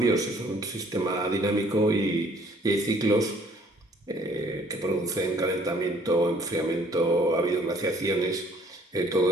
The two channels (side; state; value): both; normal; correlation 0.59